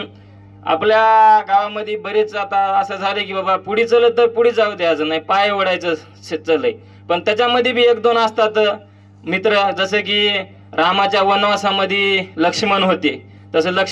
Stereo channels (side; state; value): both; identical; correlation 1.00